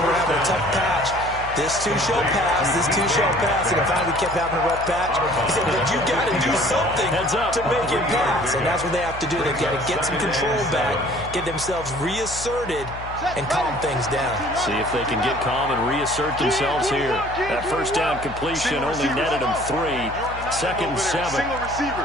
having a tough patch. This too shall pass, this too shall pass. And finally we kept having a rough patch. He said, but you got to do something to make it pass. And that's what they have to do. They've got to get some control back, get themselves reasserted, and calm things down. See if they can get calm and reassert themselves here. That first down completion only netted them 3. 2nd and 7.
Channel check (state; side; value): noise; left; hum, 13 dB below the sound